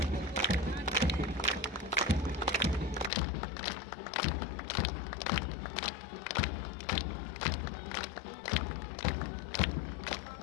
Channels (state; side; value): drops out; right; at 3.1 s